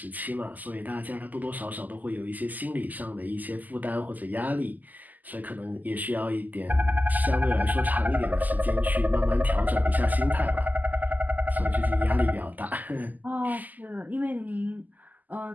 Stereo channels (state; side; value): late; left; 0.082 ms